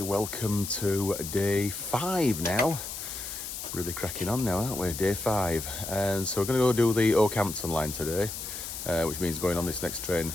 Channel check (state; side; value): noise; left; hiss, 7 dB below the sound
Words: welcome to day 5 now. Really cracking on now, aren't we? Day 5. And so we're going to go do the Okehampton line today, which means going on this next train